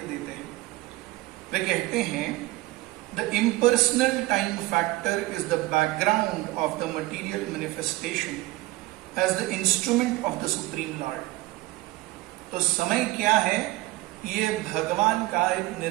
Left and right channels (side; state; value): left; quieter; 19.2 dB